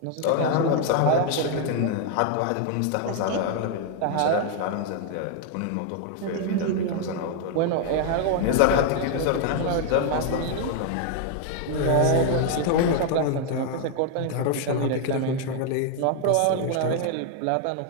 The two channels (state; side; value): different; both; correlation 0.00